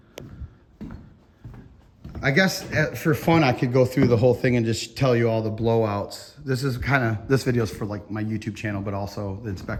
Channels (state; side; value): identical; both; correlation 1.00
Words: I guess for fun, I could go through the whole thing and just tell you all the blowouts. This video is for like my YouTube channel, but also the